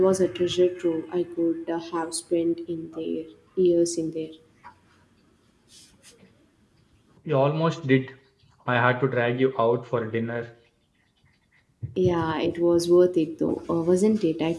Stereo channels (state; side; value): identical; both; correlation 1.00